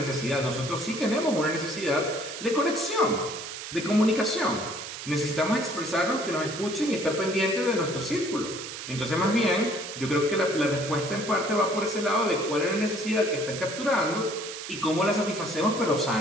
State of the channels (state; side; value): noise; right; hiss, 9 dB below the sound